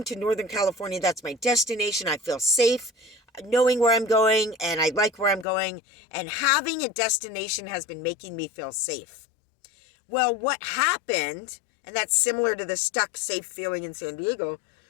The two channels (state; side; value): drops out; right; at 5.5 s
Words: to Northern California. That's my destination. I feel safe knowing where I'm going, and I like where I'm going, and having a destination has been making me feel safe. Well, what happened, and that's similar to the stuck, safe feeling in San Diego.